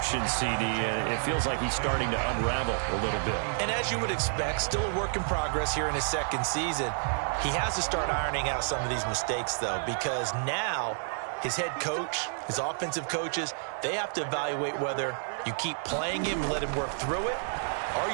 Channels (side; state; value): left; silent; 58 dB below the other